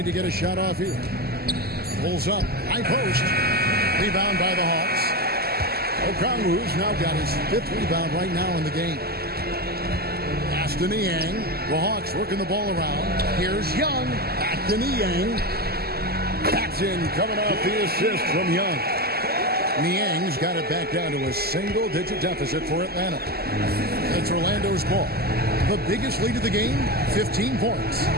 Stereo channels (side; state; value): left; late; 0.46 ms